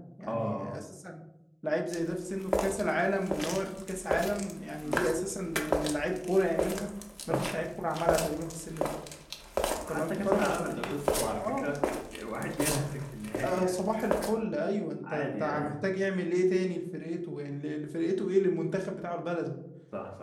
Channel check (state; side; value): identical; both; correlation 1.00